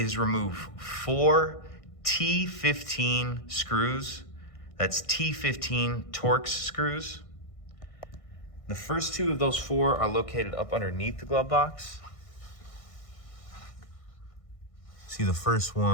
remove 4 T15 screws. That's T15 Torx screws. The first 2 of those 4 are located up underneath the glove box. See the first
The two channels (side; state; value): right; late; 1.6 ms